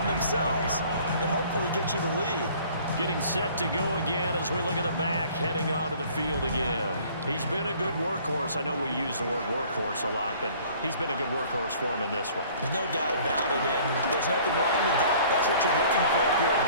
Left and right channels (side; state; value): both; inverted; correlation -0.53